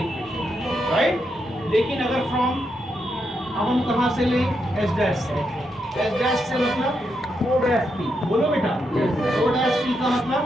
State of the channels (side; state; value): both; normal; correlation 0.82